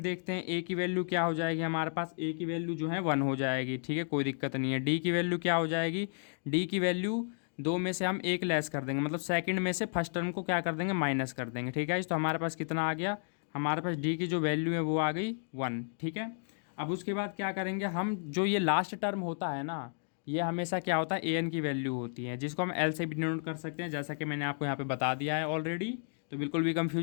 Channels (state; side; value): silent; right; digital silence